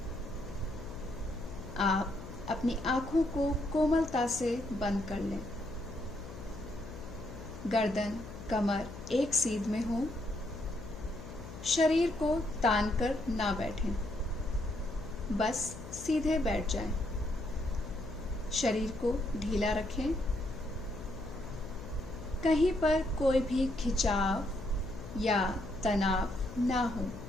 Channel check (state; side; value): noise; left; hum, 12 dB below the sound